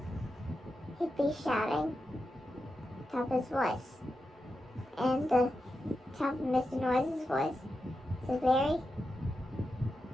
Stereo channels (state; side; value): normal; both; correlation 0.89